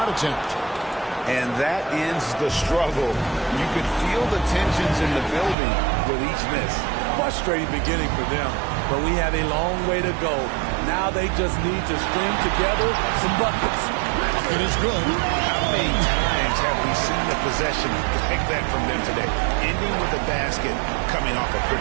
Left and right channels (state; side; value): drops out; left; at 5.6 s